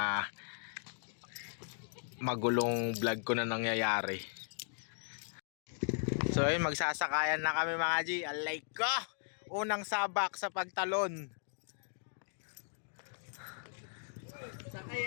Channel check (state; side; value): silent; right; digital silence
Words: magulong vlog ko na nangyayari. So ayun, magsasakayan na kami mga G. Alay ko! Unang sabak sa pagtalon. Sakay